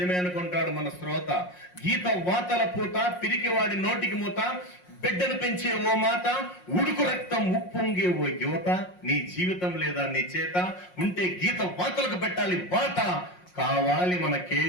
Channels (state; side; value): late; right; 5.5 ms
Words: అనుకుంటాడు మన శ్రోత. గీత వాతల పూత, పిరికివాడి నోటికి మూత, బిడ్డను పెంచే ఓ మాత, ఉడుకు రక్తం ఉప్పొంగే ఓ యువత. నీ జీవితం లేదా నీ చేత ఉంటే గీత వాతలకు పెట్టాలి వాత. కావాలి మన